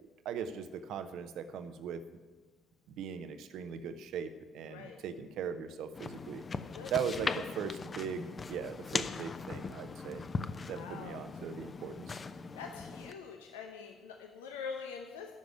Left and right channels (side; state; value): both; normal; correlation 0.61